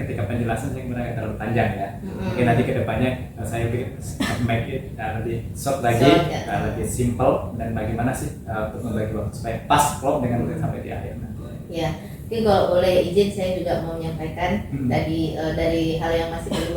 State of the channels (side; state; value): both; identical; correlation 1.00